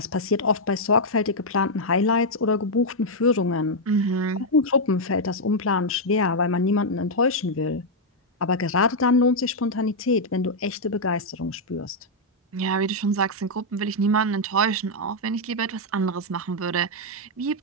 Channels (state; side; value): normal; both; correlation -0.03